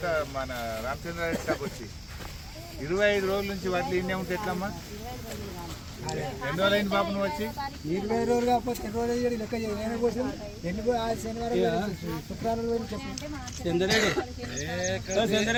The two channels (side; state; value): both; identical; correlation 1.00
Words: మన రామచంద్రారెడ్డి స్టాప్ వచ్చి. 25 రోజుల నుంచి వాటిలో ఇన్నే ఉంటే ఎట్లమ్మా? ఎన్ని రోజులు అయింది పాప నువ్వు వచ్చి? 20 రోజులు కాకపోతే 2 రోజులు లెక్క చేయడం కోసం శనివారం శుక్రవారం